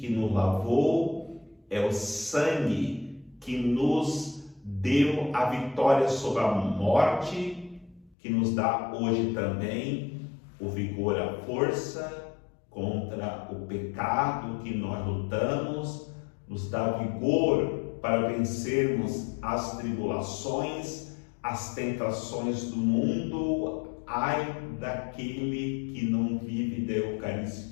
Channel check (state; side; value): drops out; right; at 8.2 s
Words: nos lavou, é o sangue que nos deu a vitória sobre a morte, que nos dá hoje também o vigor, a força contra o pecado que nós lutamos, nos dá vigor para vencermos as tribulações, as tentações do mundo. Ai daquele que não vive da